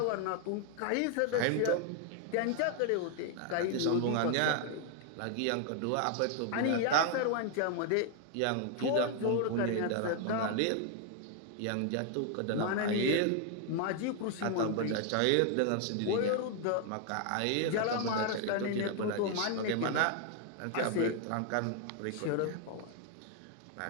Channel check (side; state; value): both; different; correlation 0.00